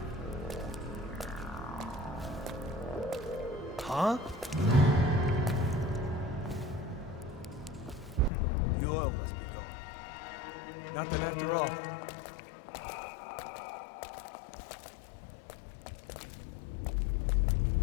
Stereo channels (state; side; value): drops out; right; at 8.3 s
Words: Huh? The oil must be going. Nothing after all.